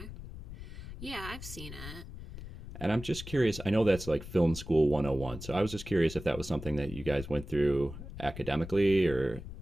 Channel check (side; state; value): left; noise; rumble, 11 dB below the sound